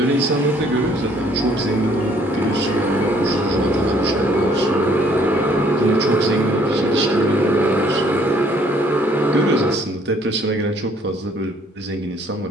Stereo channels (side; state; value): both; normal; correlation 0.62